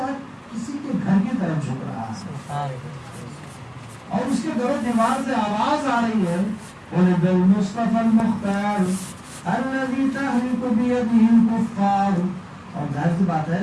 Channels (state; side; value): identical; both; correlation 1.00